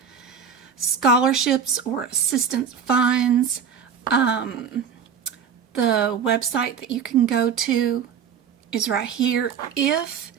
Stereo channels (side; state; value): left; quieter; 6.9 dB